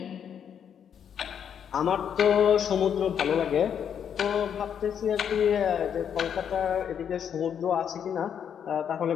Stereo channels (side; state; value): right; quieter; 8.3 dB